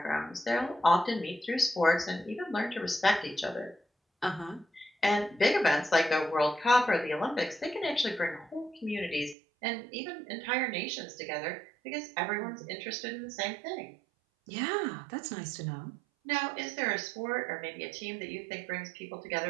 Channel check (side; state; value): left; drops out; at 9.3 s